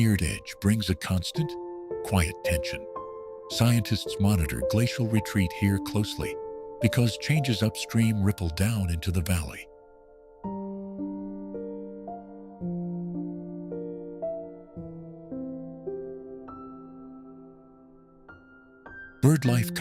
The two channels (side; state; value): both; identical; correlation 1.00